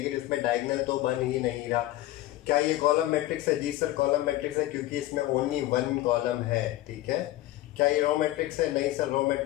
इसमें डायगोनल तो बन ही नहीं रहा। क्या ये कॉलम मैट्रिक्स है? जी सर, कॉलम मैट्रिक्स है, क्योंकि इसमें ओनली 1 कॉलम है। ठीक है, क्या ये रो मैट्रिक्स है? नहीं सर, रो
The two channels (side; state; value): right; quieter; 16.0 dB